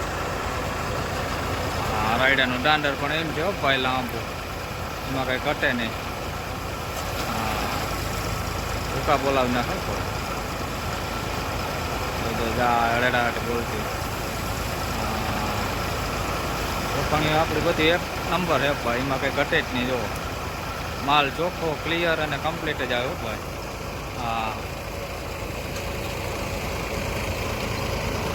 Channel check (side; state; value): both; identical; correlation 1.00